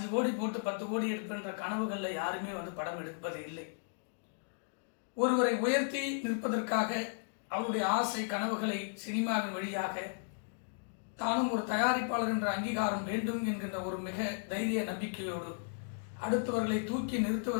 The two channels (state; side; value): silent; right; digital silence